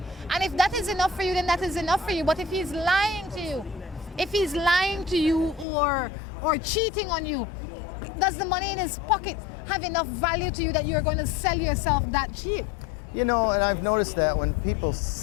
And if that is enough for you, then that is enough for you. But if he's lying to you, or cheating on you, does the money in his pocket have enough value to you that you're going to sell yourself that cheap? You know, and I've noticed that when people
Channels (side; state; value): right; drops out; at 5.7 s